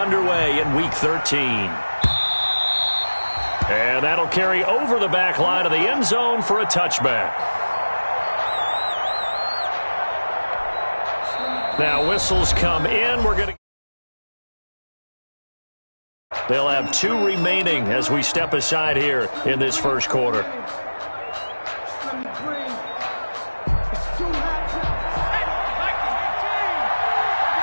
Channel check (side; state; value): both; inverted; correlation -1.00